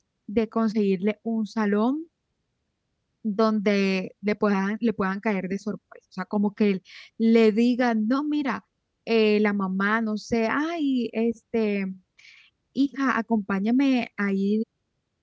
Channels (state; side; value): identical; both; correlation 1.00